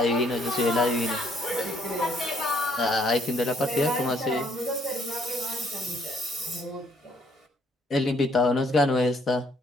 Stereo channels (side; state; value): both; normal; correlation 0.65